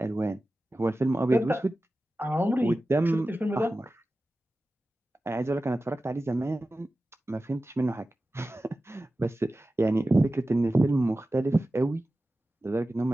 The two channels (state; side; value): normal; both; correlation 0.95